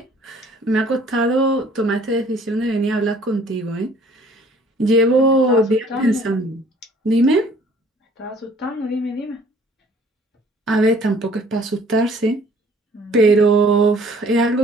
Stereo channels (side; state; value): both; normal; correlation 0.56